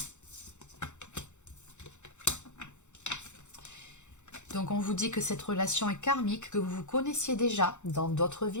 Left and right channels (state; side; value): late; right; 0.84 ms